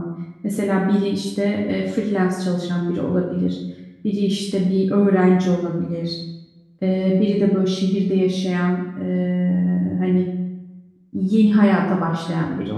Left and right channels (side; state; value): both; identical; correlation 1.00